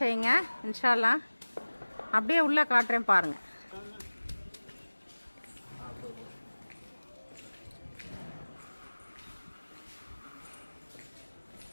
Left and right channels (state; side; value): inverted; both; correlation -1.00